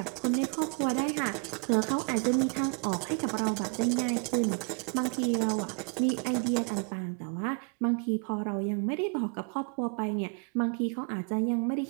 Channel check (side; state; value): left; quieter; 37.8 dB